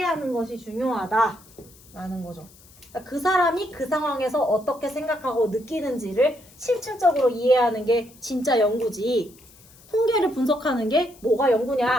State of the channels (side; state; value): left; noise; hiss, 25 dB below the sound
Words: 것이 중요하다라는 거죠. 그러니까 그 사람이 그 상황에서 어떻게 생각하고 느끼는지를 실질적으로 이해하는 게 진짜 연구지. 통계를 분석하는 게 뭐가